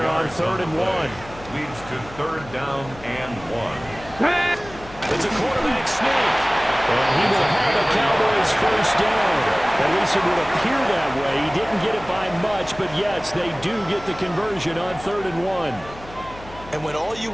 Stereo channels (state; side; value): noise; left; hum, 18 dB below the sound